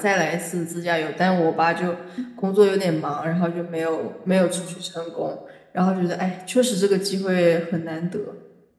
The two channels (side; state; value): both; identical; correlation 1.00